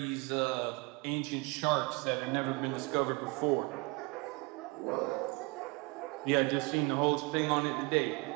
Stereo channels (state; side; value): quieter; left; 28.0 dB